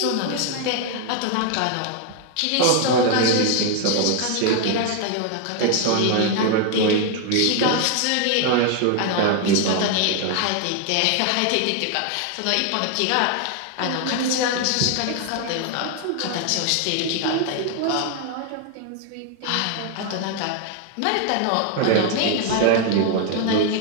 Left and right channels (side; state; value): both; different; correlation 0.01